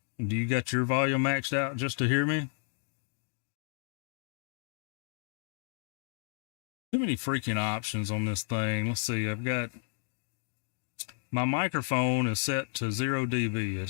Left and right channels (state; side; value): silent; right; digital silence